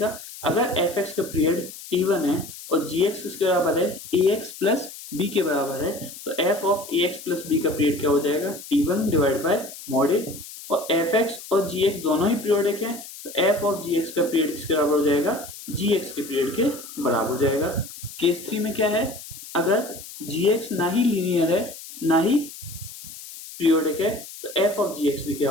अगर fx का पीरियड t1 है और gx किसके बराबर है? ax प्लस b के बराबर है तो f of ax plus b का पीरियड क्या हो जाएगा? t1 divide by mod a। और fx और gx दोनों ही पीरियोडिक हैं तो f ऑफ gx का पीरियड किसके बराबर हो जाएगा? gx के पीरियड के बराबर हो जाएगा। केस 3 में क्या है? अगर gx ना ही लीनियर है ना ही पीरियोडिक है तो f ऑफ gx भी क्या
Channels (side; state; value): left; noise; hiss, 14 dB below the sound